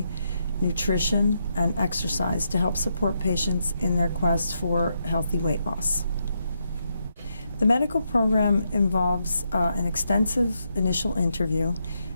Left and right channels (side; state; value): both; inverted; correlation -0.81